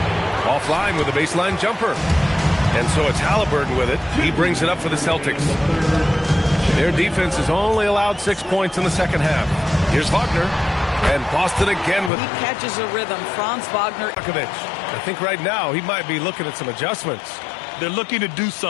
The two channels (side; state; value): right; drops out; at 12.1 s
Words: Offline with a baseline jumper. And so it's Halliburton with it. He brings it up for the Celtics. Their defense has only allowed 6 points in the second half. Here's Wagner. And Boston again with... He catches a rhythm. Franz Wagner. I think right now he might be looking at some adjustments. They're looking to do